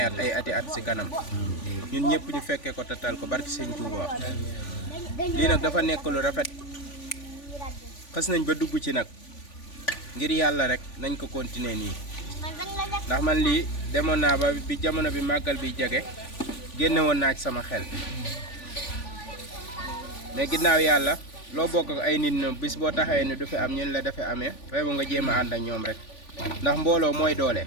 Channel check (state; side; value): late; right; 3.5 ms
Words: ay ati at si kanam ñun ñëpp ñu fekkee ko tatal ko barki sëñ Touba lii nag dafa nekk lu rafet xas nañ ba dugg ci nag ngir yàlla rek nañ ko continuer nii ndax man lii demoon naa ba bi jamono bi màggal bi jege génne woon naa ci sama xel mais ginnaaw yàlla loo bokk ak ay nit ñoom bis boo taxawee ni du fi am ñun la dafa amee fay ba nga jéem a ànd ak ñoom rek ndax mbooloo mooy doole